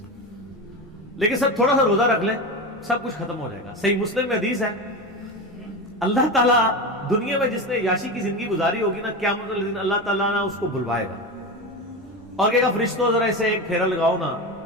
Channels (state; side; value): normal; both; correlation 0.22